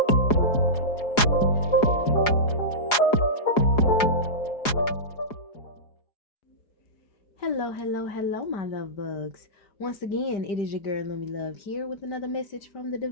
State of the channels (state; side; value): late; right; 4.8 ms